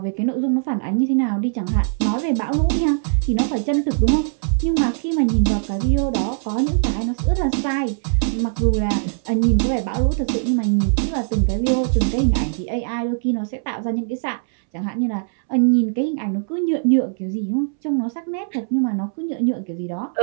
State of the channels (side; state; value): left; silent; 65 dB below the other